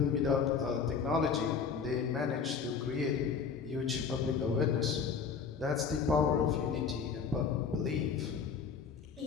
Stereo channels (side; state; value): right; quieter; 6.1 dB